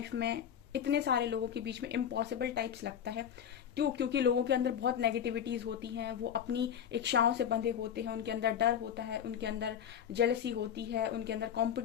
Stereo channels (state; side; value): quieter; right; 8.8 dB